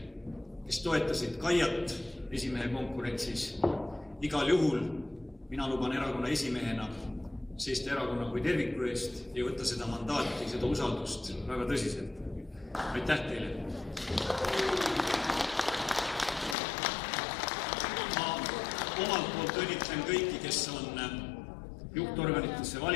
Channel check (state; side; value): drops out; right; at 16.6 s